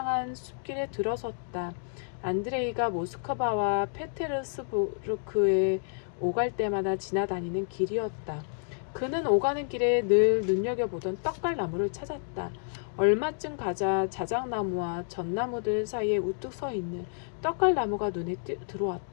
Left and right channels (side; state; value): right; silent; digital silence